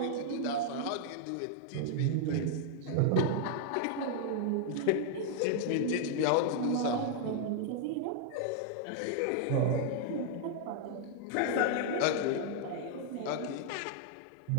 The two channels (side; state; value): both; different; correlation -0.01